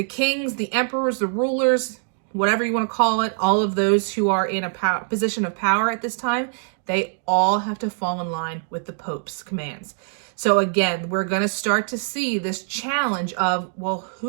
kings, the emperors, the rulers, whatever you want to call it, all of those who are in a position of power at this time, they all have to fall in line with the Pope's commands. So again, we're going to start to see this challenge of, well,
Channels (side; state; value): left; silent; 63 dB below the other